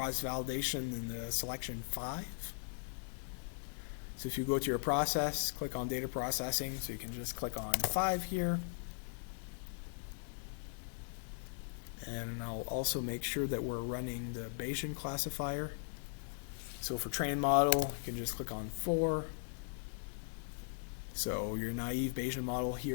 in the selection 5. So if you go to your process, click on data processing, so you can just click on 5 here. And I'll also make sure that we're running the Bayesian classifier. So for train model, you can just click on 4. So your naive Bayesian model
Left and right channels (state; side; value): silent; right; digital silence